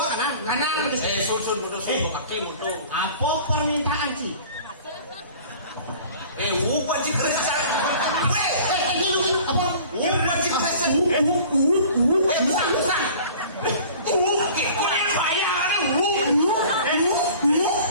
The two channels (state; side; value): inverted; both; correlation -0.46